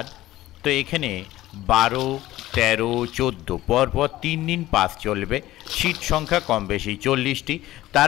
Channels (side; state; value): right; quieter; 15.8 dB